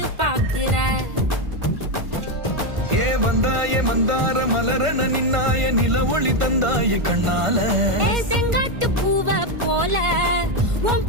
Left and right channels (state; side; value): late; left; 1.5 ms